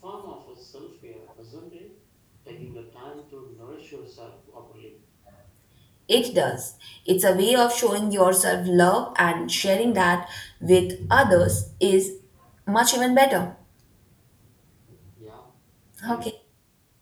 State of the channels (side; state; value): both; identical; correlation 1.00